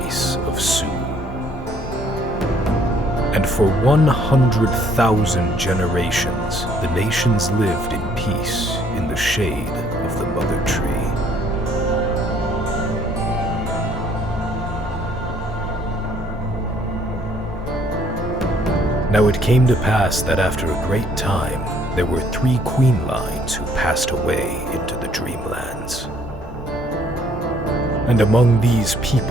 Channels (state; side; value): normal; both; correlation 0.63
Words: of Su. And for 100,000 generations, the nations lived in peace in the shade of the Mother Tree. Now it came to pass that after a great time, there were 3 queen lines who passed away into the dreamlands. And among these